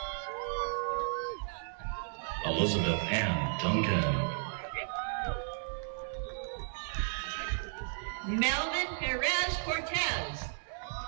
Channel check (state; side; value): silent; left; 55 dB below the other